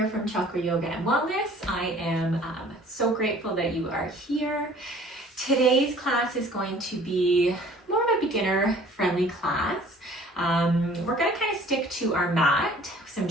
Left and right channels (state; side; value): normal; both; correlation 0.51